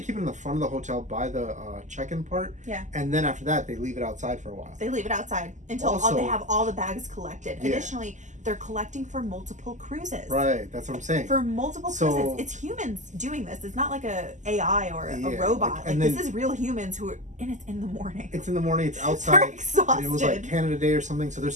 keep it in the front of the hotel by the check-in part. Yeah. And then after that, they leave it outside for a while. They leave it outside until they have all the bags collected. Yeah. Additionally, they're collecting for multiple cruises. Right, that's what I'm saying. For multiple cruises. It's humans doing this. It's not like a AI or a robot. Like, this is real humans who are, and it's in the morning. It's in the morning, it's outside. They're exhausted. It was like Canada Day or something, so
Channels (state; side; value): late; left; 0.35 ms